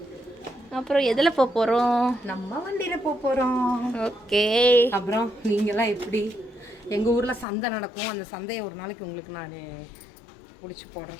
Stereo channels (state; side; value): drops out; right; at 7.5 s